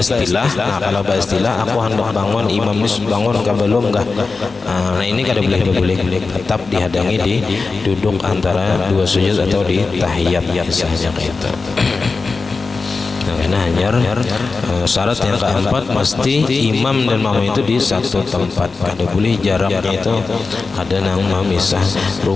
aku hendak bangun, imam ini bangun kah belum kah? Nah, ini kada boleh berbulik, tetap dihadangi di duduk antara dua sujud atau di tahiyat misalnya kayak itu. Nah, hanya syarat yang keempat, mesti imam dan makmum itu di satu tempat. Kada boleh jaraknya itu ada nang memisah.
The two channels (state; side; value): quieter; right; 4.2 dB